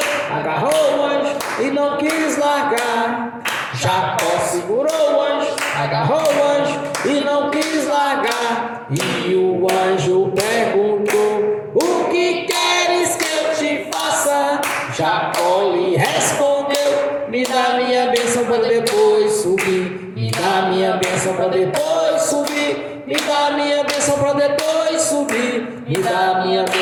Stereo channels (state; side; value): identical; both; correlation 1.00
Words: agarrou o anjo e não quis largar. Jacó segurou o anjo, agarrou o anjo e não quis largar. E o anjo perguntou: o que queres que eu te faça? Jacó lhe respondeu: me dá minha bênção para depois subir. Me dá minha bênção para depois subir. Me dá minha bênção para depois subir. Me dá minha